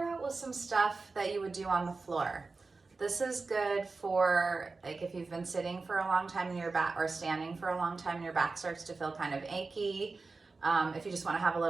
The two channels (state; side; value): quieter; left; 3.9 dB